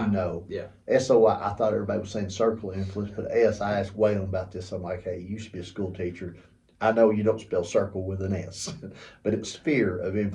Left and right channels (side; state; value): both; identical; correlation 1.00